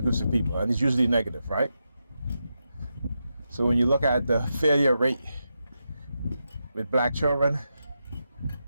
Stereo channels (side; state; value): both; inverted; correlation -0.87